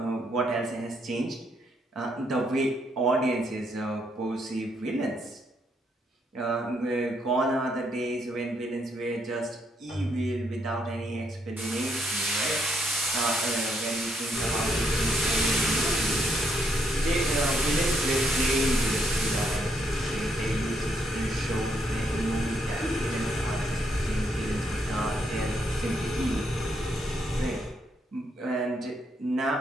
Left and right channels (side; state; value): both; normal; correlation 0.75